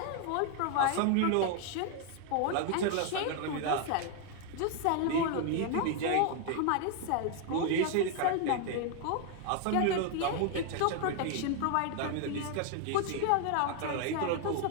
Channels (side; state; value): both; different; correlation 0.00